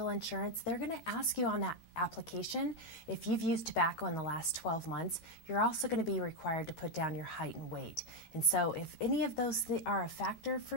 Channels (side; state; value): right; late; 13 ms